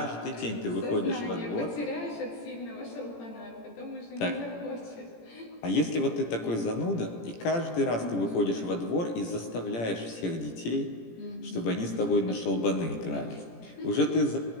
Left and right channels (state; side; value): late; right; 17 ms